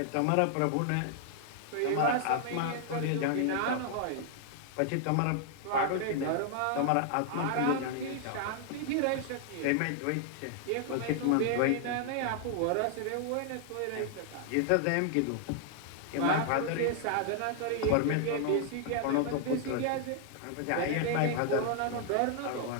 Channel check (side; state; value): both; different; correlation 0.00